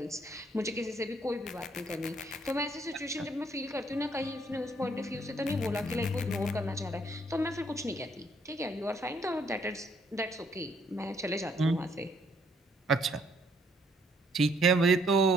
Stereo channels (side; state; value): both; normal; correlation 0.67